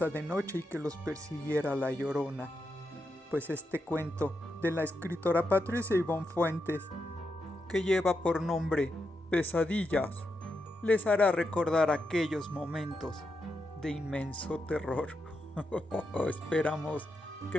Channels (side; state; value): both; normal; correlation 0.85